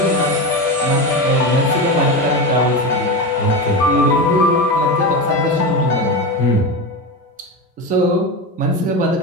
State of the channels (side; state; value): both; normal; correlation 0.19